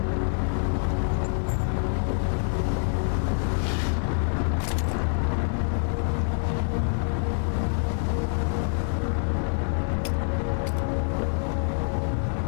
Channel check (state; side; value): silent; right; 61 dB below the other